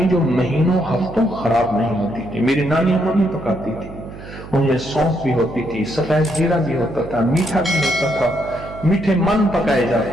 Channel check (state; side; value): noise; right; hum, 15 dB below the sound